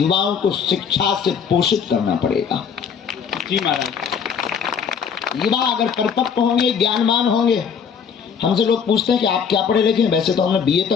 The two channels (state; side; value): quieter; right; 6.9 dB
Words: को शिक्षा से पोषित करना पड़ेगा। जी महाराज। युवा अगर परिपक्व होंगे, ज्ञानवान होंगे, हमसे लोग पूछते हैं कि आप क्या पढ़े लिखे हैं? वैसे तो हमने बीए